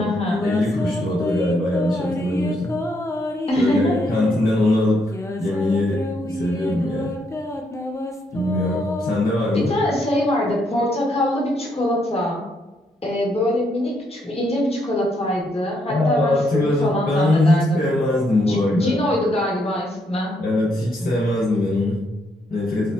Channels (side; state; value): both; normal; correlation 0.75